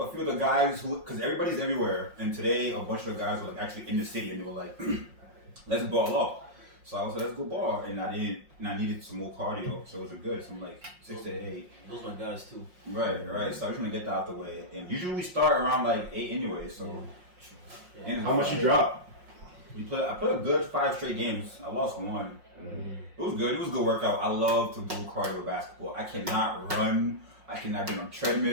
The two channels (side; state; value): left; late; 5.6 ms